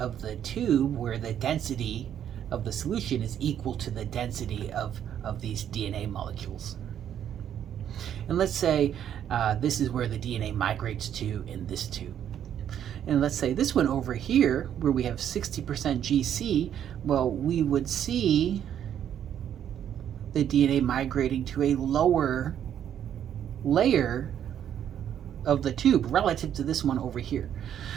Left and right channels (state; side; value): quieter; left; 9.8 dB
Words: the tube where the density of the solution is equal to the density of these DNA molecules. And let's say this is where the DNA migrates to in this tube. And let's say this one over here, where we have 60% GC, well, we would see the DNA migrating to a lower layer of the tube relative to this one over here.